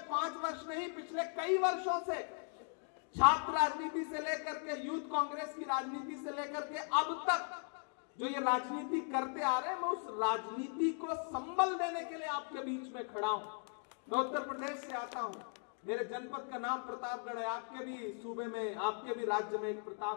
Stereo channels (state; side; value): silent; right; 52 dB below the other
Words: 5 वर्ष नहीं, पिछले कई वर्षों से, छात्र राजनीति से लेकर के यूथ कांग्रेस की राजनीति से लेकर के अब तक जो ये राजनीति करते आ रहे हैं, मैं उस राजनीति को संबल देने के लिए आपके बीच में खड़ा हूं। मैं उत्तर प्रदेश से आता हूं, मेरे जनपद का नाम प्रतापगढ़ है। आपके भी सूबे में, आपके भी राज्य में एक